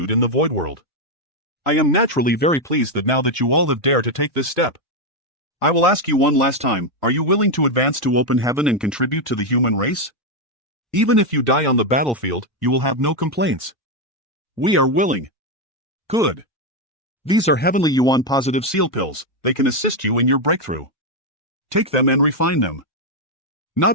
in the Void world. I am naturally very pleased that now that you all have dared to take this step. I will ask you one last time, are you willing to advance to open heaven and contribute to the human race? Even if you die on the battlefield, you will have no complaints. We are willing. Good. These are Heavenly Yuan Positive Seal Pills. They can assist you in your breakthrough. Take them and refine them. Not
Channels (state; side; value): normal; both; correlation 0.04